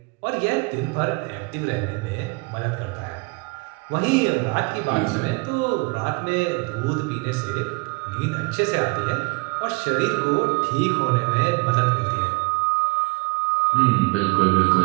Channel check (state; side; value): quieter; left; 27.6 dB